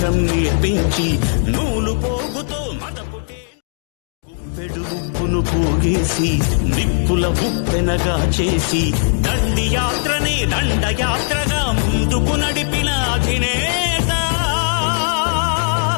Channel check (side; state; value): right; silent; 67 dB below the other